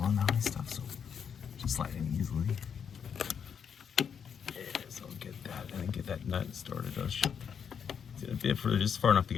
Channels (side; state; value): right; quieter; 7.3 dB